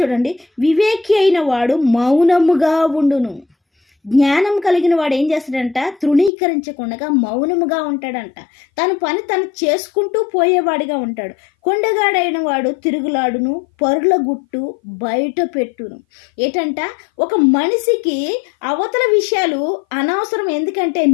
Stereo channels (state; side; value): drops out; right; at 6.3 s